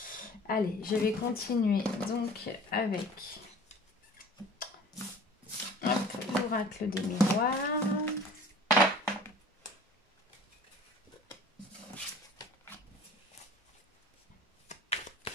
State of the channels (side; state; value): both; normal; correlation 0.45